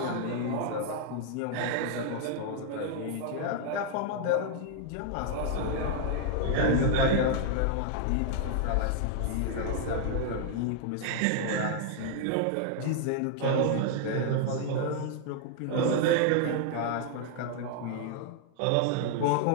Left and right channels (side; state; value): both; different; correlation 0.00